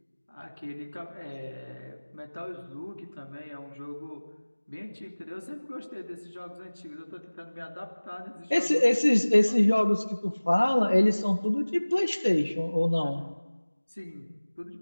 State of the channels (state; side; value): inverted; both; correlation -1.00